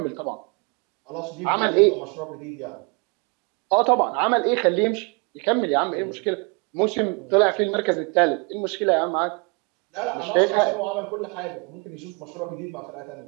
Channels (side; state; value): left; quieter; 31.6 dB